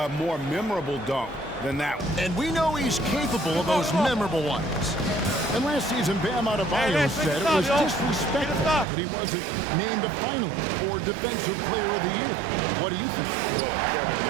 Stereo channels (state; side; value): drops out; left; at 8.8 s